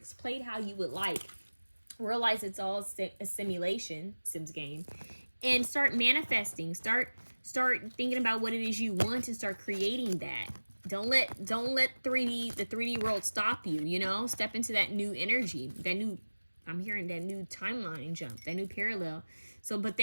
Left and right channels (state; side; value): inverted; both; correlation -1.00